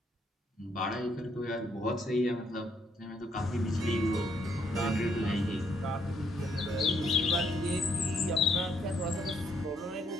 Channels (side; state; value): both; normal; correlation 0.72